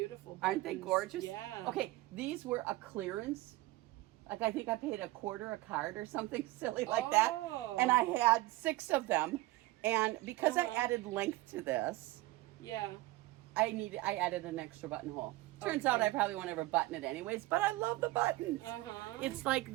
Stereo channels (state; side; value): quieter; left; 19.0 dB